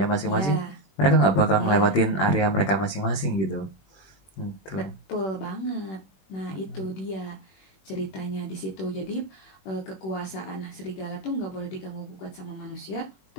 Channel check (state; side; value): late; right; 21 ms